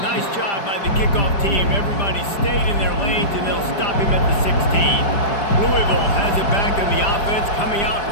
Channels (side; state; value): right; late; 5.0 ms